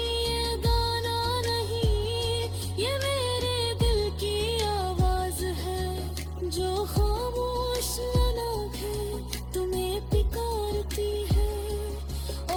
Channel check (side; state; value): both; identical; correlation 1.00